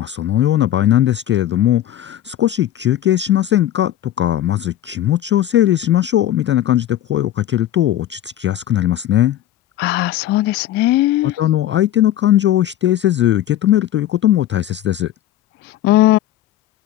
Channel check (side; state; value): right; quieter; 12.6 dB